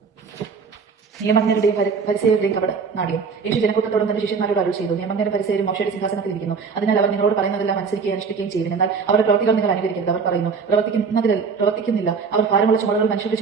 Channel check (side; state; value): left; quieter; 5.4 dB